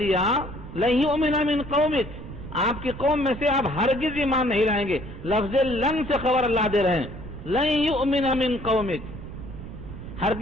دیا، لَن يُؤْمِنَ مِن قَوْمِكَ، آپ کی قوم میں سے آپ ہرگز ایمان نہیں لائیں گے، لفظ لن سے خبر اللہ دے رہے ہیں، لَن يُؤْمِنَ مِن قَوْمِكَ،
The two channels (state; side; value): noise; right; rumble, 11 dB below the sound